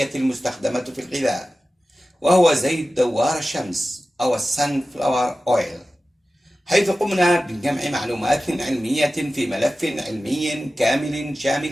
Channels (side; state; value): both; normal; correlation 0.95